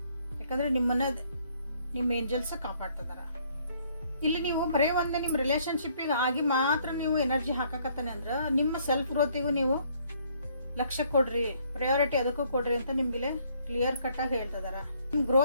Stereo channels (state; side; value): inverted; both; correlation -0.65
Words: ಯಾಕಂದರೆ ನಿಮ್ಮ ಏಂಜಲ್ಸ್ ಕಾಪಾಡ್ತಿದಾರ. ಇಲ್ಲಿ ನೀವು ಬರೀ ಒಂದೇ ನಿಮ್ಮ ರಿಲೇಶನ್ಶಿಪ್ಪಿಗೆ ಆಗಿ ಮಾತ್ರ ನೀವು ಎನರ್ಜಿ ಹಾಕಕತ್ತಾನೆ ಅಂದ್ರೆ ನಿಮ್ಮ ಸೆಲ್ಫ್ ಗ್ರೋತಿಗೂ ನೀವು ಲಕ್ಷ್ಯ ಕೊಡ್ರಿ, ಪ್ರಯಾರಿಟಿ ಅದಕ್ಕೂ ಕೊಡ್ರಿ ಅಂತ ನಿಮ್ಗೆ ಕ್ಲಿಯರ್ ಕಟ್ ಆಗಿ ಹೇಳ್ತಿದಾರ. ನಿಮ್